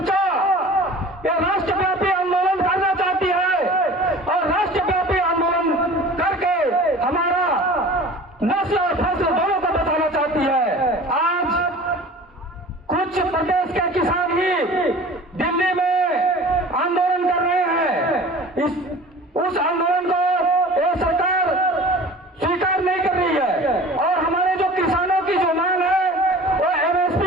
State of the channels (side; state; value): both; normal; correlation 0.42